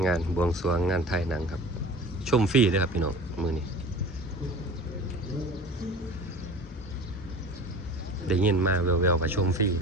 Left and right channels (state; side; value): normal; both; correlation 0.39